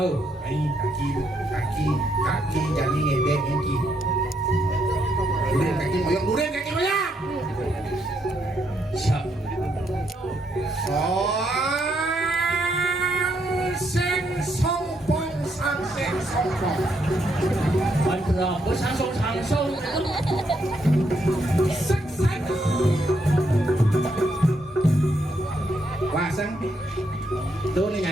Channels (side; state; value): both; normal; correlation 0.76